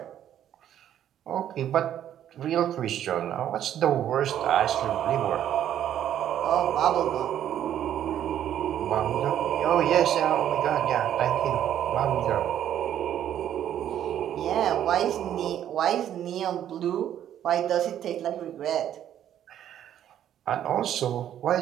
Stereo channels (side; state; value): left; quieter; 10.7 dB